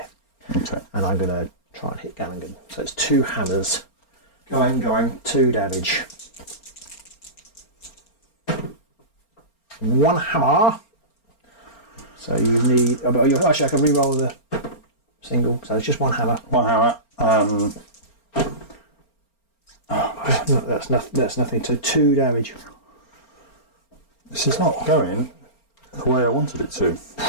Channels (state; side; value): late; right; 4.4 ms